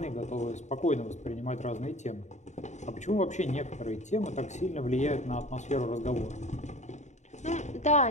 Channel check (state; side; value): late; right; 0.34 ms